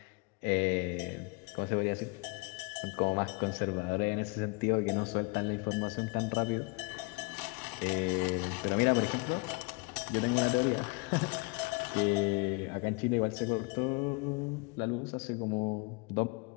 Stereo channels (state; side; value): quieter; right; 29.0 dB